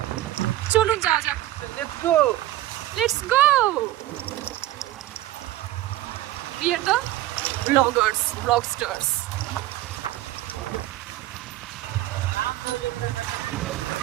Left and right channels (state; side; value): quieter; left; 15.3 dB